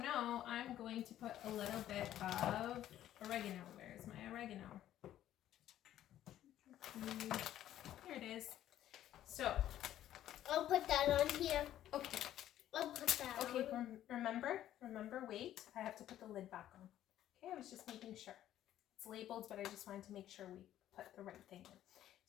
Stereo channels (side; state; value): right; quieter; 12.3 dB